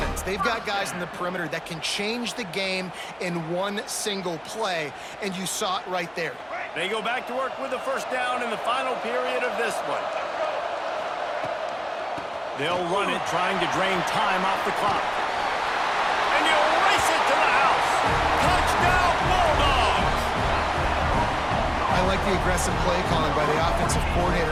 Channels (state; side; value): identical; both; correlation 1.00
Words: They've got guys in the perimeter that can change the game in one single play, and you saw it right there. They go back to work with the first down in the final period of this one. They'll run it, trying to drain time off the clock. And you'll race it to the house. Touchdown, Bulldogs! I like the aggressive play calling by the offensive